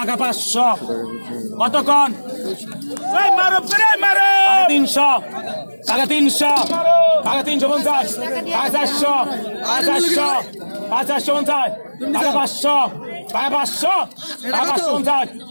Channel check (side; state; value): both; inverted; correlation -1.00